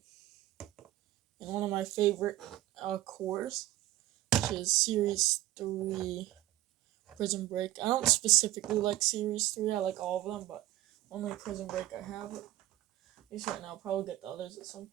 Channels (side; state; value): left; quieter; 15.4 dB